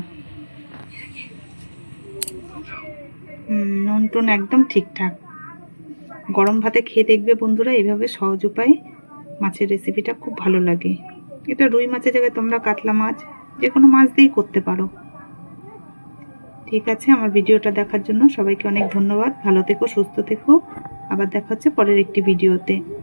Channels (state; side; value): inverted; both; correlation -1.00